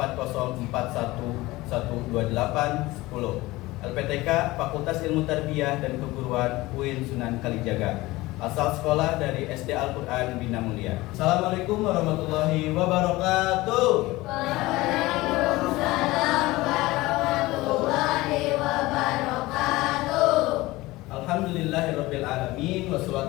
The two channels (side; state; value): right; quieter; 19.6 dB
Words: LPTK Fakultas Ilmu Tarbiyah dan Keguruan UIN Sunan Kalijaga. Asal sekolah dari SD Al-Quran Bina Mulia. Assalamualaikum warahmatullahi wabarakatuh. Waalaikumsalam warahmatullahi wabarakatuh. Alhamdulillahirabbil alamin